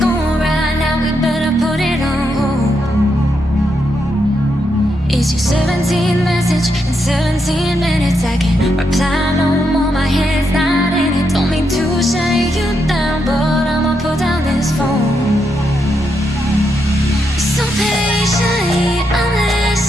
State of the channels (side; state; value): both; normal; correlation 0.81